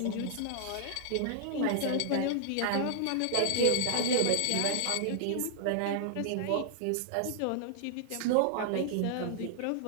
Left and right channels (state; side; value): different; both; correlation -0.01